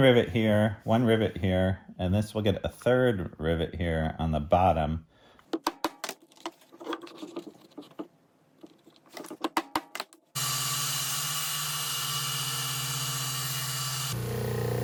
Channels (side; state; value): both; identical; correlation 1.00